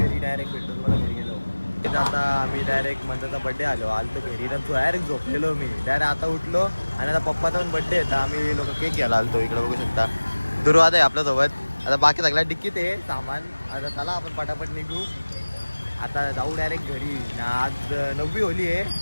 डायरेक्ट भेटतो. मला घरी गेलो आता आम्ही डायरेक्ट मंदाचा बड्डे आलो घरी. तर डायरेक्ट झोपलेलो मी. डायरेक्ट आता उठलो आणि आता पप्पाचा पण बड्डे आहे. आम्ही लोक केक घ्यायला आलतो. इकडे बघू शकता दुर्वाद आहे आपल्यासोबत. आता बाकी सगळ्या डिक्कीत आहे सामान. आता चला आपण पटापट निघू. आता जाऊ डायरेक्ट घरी. आज 9वी होली आहे.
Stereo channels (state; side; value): inverted; both; correlation -1.00